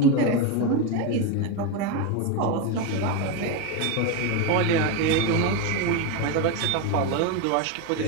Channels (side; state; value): both; different; correlation 0.03